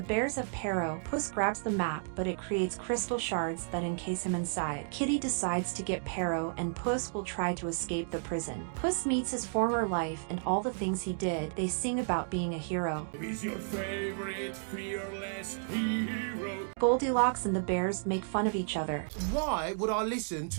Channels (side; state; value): left; silent; digital silence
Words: bears have Pero. Puss grabs the map, but it creates crystal shards that encase him inside. Kitty decides to get Pero, and Puss will try to escape the prison. Puss meets his former life and all the things he did. They sing about being a hero. He's your favorite fearless hero. Goldilocks and the bears make fun of each other, Why would I listen